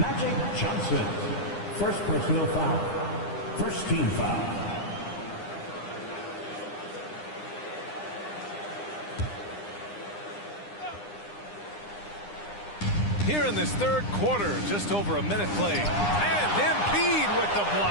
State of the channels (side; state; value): right; late; 9.9 ms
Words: Johnson. First personal foul. First team foul. Here in this third quarter, just over a minute played. And Embiid with the